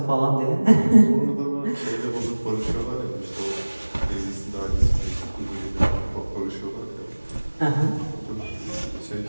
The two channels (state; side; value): inverted; both; correlation -1.00